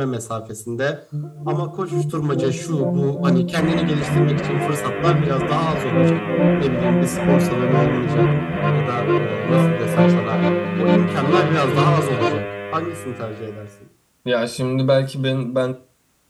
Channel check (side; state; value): both; identical; correlation 1.00